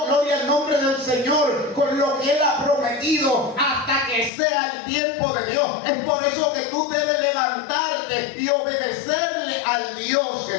gloria al nombre del Señor, con lo que Él ha prometido, hasta que sea el tiempo de Dios. Es por eso que tú debes levantarte y obedecerle al Dios que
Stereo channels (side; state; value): right; drops out; at 4.3 s